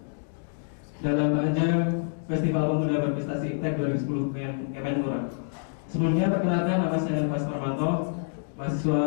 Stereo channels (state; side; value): silent; right; digital silence